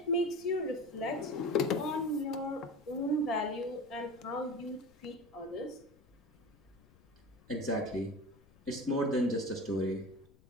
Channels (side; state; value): left; noise; rumble, 28 dB below the sound